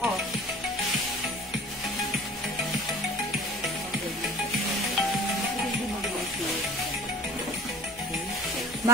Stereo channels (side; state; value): both; normal; correlation 0.45